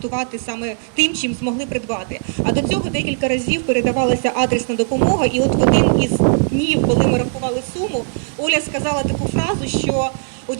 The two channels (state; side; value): silent; left; digital silence